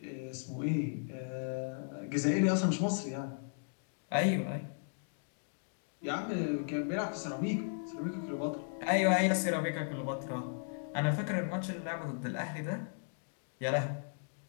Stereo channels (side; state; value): right; silent; digital silence